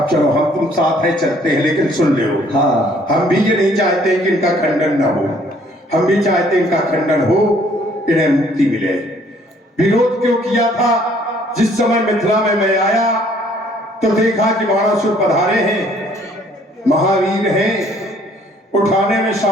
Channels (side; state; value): both; normal; correlation 0.61